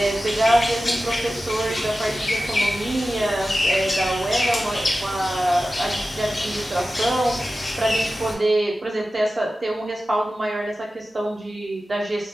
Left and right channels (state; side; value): normal; both; correlation 0.94